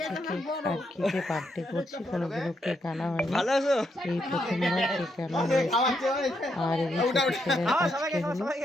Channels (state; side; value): normal; both; correlation 0.79